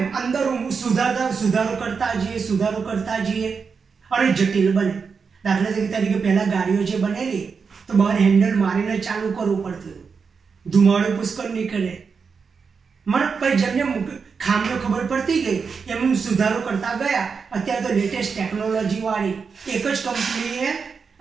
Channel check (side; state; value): left; quieter; 5.5 dB